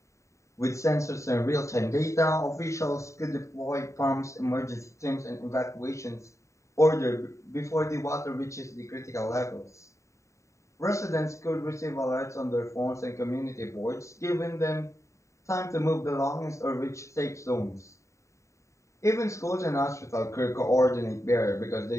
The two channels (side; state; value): right; late; 0.14 ms